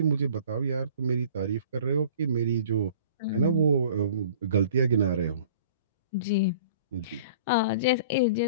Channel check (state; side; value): inverted; both; correlation -0.48